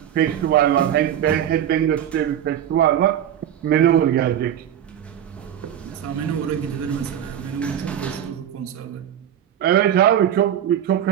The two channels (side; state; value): left; quieter; 10.3 dB